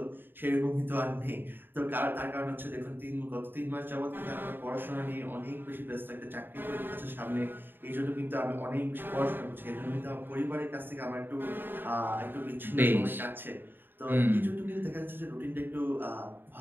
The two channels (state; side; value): late; left; 0.096 ms